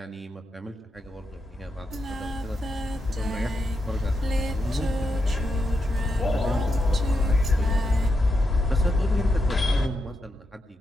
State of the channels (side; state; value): both; normal; correlation 0.85